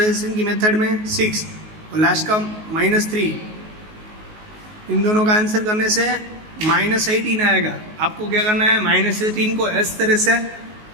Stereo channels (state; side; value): late; left; 19 ms